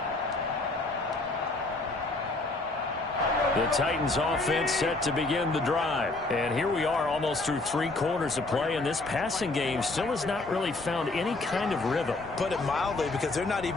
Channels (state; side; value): quieter; right; 3.1 dB